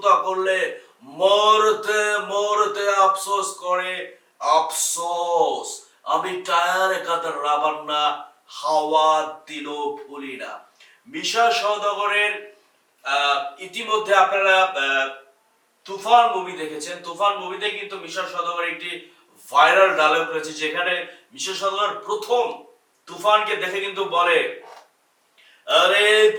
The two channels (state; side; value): identical; both; correlation 1.00